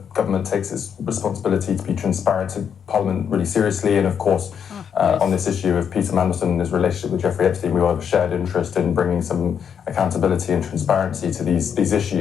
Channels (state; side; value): quieter; right; 7.7 dB